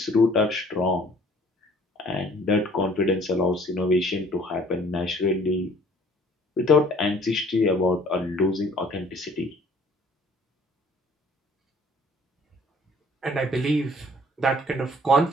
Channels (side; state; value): both; normal; correlation 0.55